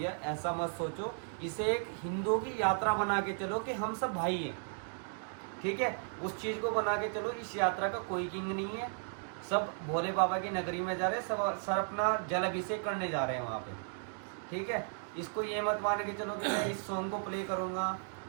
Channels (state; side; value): silent; left; 54 dB below the other